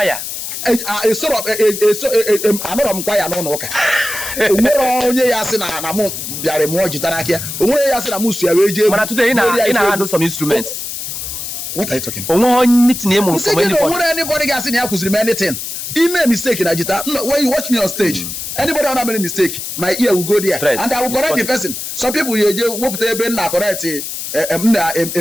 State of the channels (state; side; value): noise; left; hiss, 6 dB below the sound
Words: ya. Anọrọ m kwa ya n'ụlọ ụka. Onwere onye ya sị na mụ bịara mụọ jita n'aka ya. Onwere ya sị na mụ sụyara eje egwu. Mana today ị na-handle some instruments. What are you talking? Onwe onye tinye mụ from anybody. Onwere anybody ga-asị na ya kụziri m anything. He made a mistake in Ajita. When you watch me on stage, anybody who made a mistake, my ear will go there, and I will correct the person. Some people you whoop the ben na correct